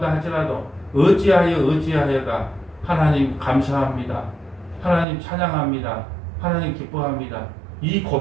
할지라도 어찌하여가 하나님 감사합니다. 하나님 찬양합니다. 하나님 기뻐합니다. 이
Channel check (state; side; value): drops out; left; at 5.1 s